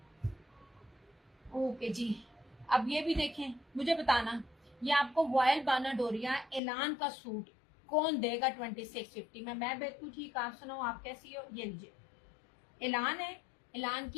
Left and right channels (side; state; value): right; drops out; at 6.6 s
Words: ओके जी। अब ये भी देखें, मुझे बताना ये आपको वॉयल बानाडोरिया एलान का सूट कौन देगा 2650 में? मैं बिल्कुल ठीक, आप सुनाओ आप कैसी हो? ये लीजिए, एलान है, एलान